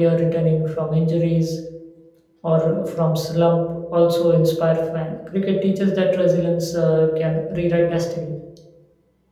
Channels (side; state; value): both; identical; correlation 1.00